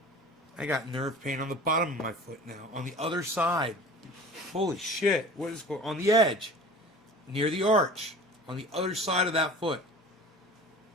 I got nerve pain on the bottom of my foot now. On the other side. Holy shit. What is going on? The edge. Near the arch. On the other side of that foot.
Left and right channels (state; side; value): normal; both; correlation 0.40